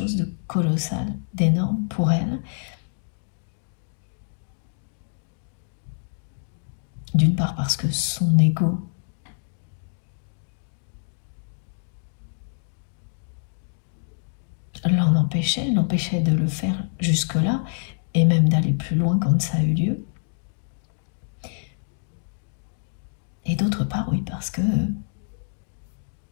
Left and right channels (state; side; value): silent; right; digital silence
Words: de colossal, d'énorme pour elle. D'une part parce que son ego l'empêchait de le faire jusque-là, et même d'aller plus loin quand ça a eu lieu. Et d'autre part, oui, parce que